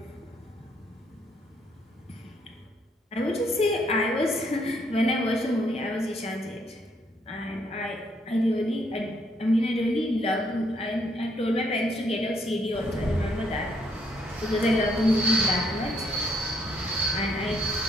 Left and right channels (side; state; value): both; normal; correlation 0.71